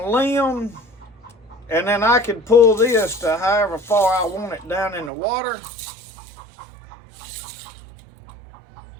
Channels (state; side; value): drops out; left; at 5.1 s